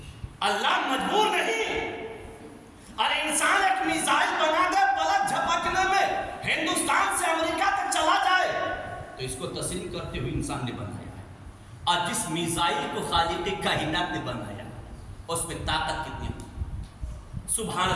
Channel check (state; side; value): identical; both; correlation 1.00